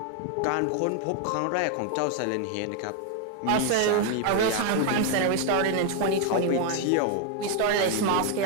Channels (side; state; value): both; different; correlation 0.00